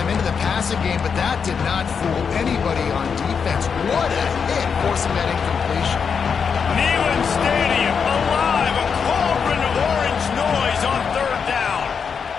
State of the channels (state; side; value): quieter; right; 6.3 dB